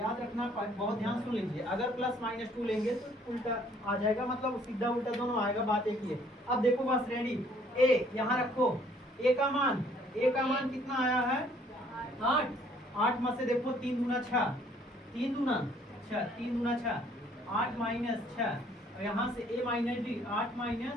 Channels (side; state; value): both; normal; correlation 0.61